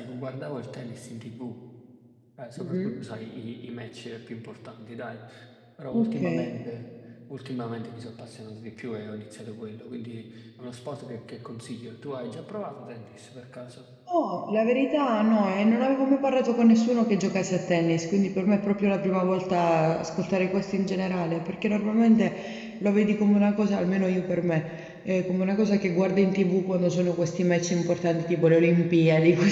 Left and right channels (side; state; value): both; identical; correlation 1.00